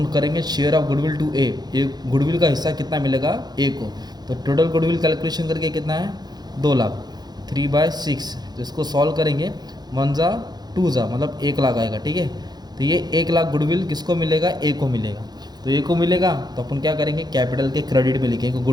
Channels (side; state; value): left; late; 0.20 ms